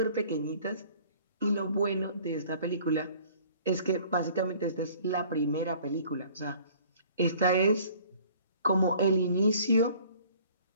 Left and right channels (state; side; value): inverted; both; correlation -0.53